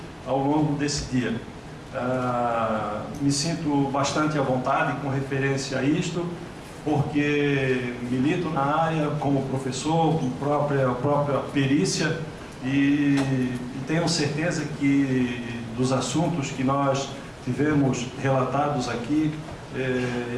ao longo desse dia. Me sinto bastante à vontade com referência a isto, porque milito na área como professor, com própria perícia, e tenho certeza que dos assuntos que nós tivemos relatados aqui,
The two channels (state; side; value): identical; both; correlation 1.00